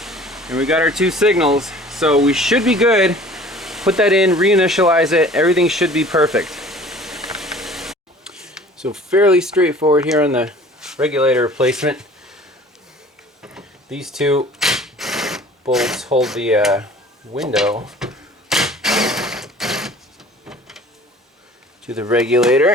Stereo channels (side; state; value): both; normal; correlation 0.47